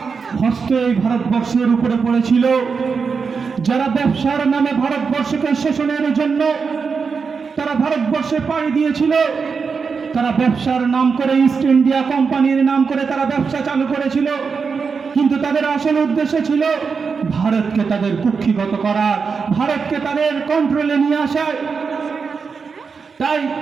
হস্তে এই ভারতবর্ষের উপরে পড়েছিল, যারা ব্যবসার নামে ভারতবর্ষকে শোষণের জন্য তারা ভারতবর্ষে পাড়ি দিয়েছিল, তারা ব্যবসার নাম করে ইস্ট ইন্ডিয়া কোম্পানির নাম করে তারা ব্যবসা চালু করেছিল, কিন্তু তাদের আসল উদ্দেশ্য ছিল ভারতকে তাদের কুক্ষিগত করা, ভারতকে তাদের কন্ট্রোলে নিয়ে আসা। তাই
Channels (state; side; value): quieter; left; 5.4 dB